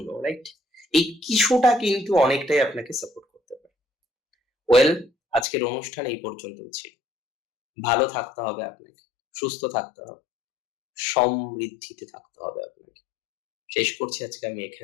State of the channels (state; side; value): drops out; right; at 5.5 s